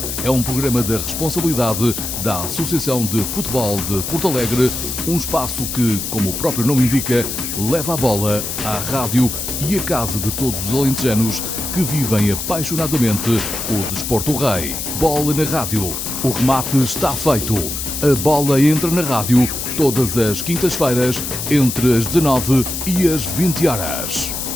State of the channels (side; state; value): left; noise; hiss, 5 dB below the sound